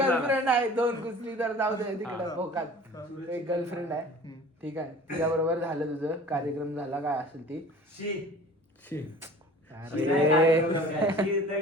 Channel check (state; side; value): normal; both; correlation 0.44